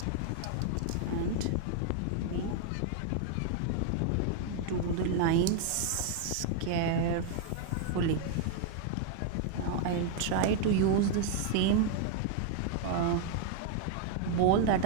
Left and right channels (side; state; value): both; different; correlation 0.00